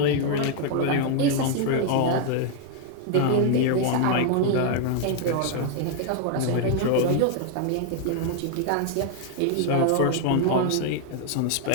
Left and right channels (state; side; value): different; both; correlation 0.00